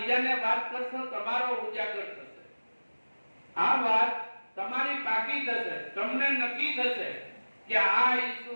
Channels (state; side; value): inverted; both; correlation -1.00